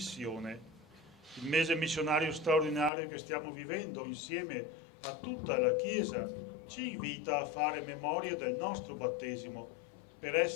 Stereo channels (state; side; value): drops out; right; at 2.9 s